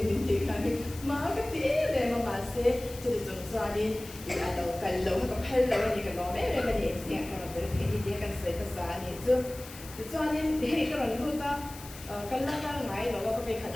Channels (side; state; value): left; noise; hiss, 15 dB below the sound